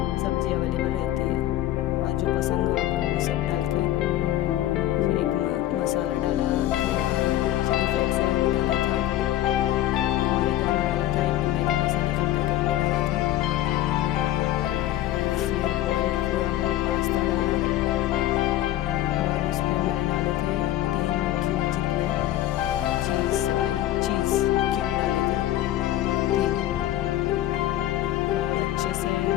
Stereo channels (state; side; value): quieter; right; 13.8 dB